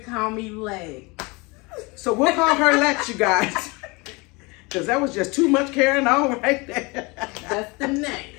call me Lexx. So we'll call her Lexx, you guys. Because that was just too much carrying on right there. That's the name.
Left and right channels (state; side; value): quieter; right; 26.6 dB